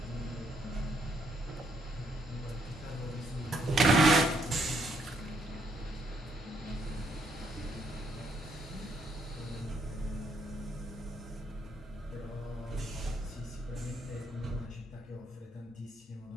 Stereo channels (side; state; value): both; normal; correlation 0.73